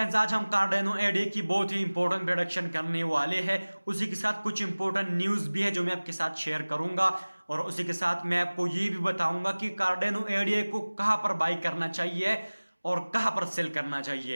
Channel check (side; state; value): both; inverted; correlation -1.00